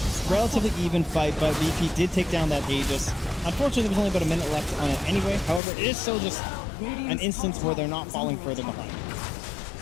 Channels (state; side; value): drops out; right; at 5.6 s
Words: relatively even fight, but VP did take down that Aegis. Unfortunately, there was only about a minute left on it anyway. However, it is still just an instance where they're not falling further behind.